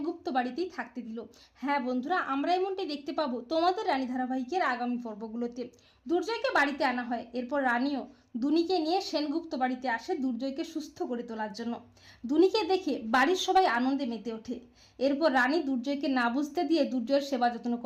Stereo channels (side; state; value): both; identical; correlation 1.00